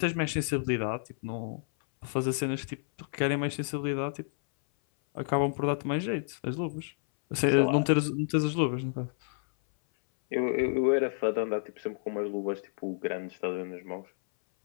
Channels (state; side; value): silent; right; 58 dB below the other